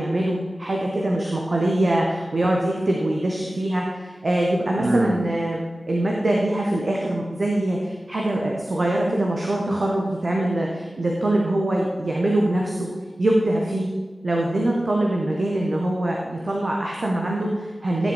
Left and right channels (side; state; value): both; normal; correlation 0.95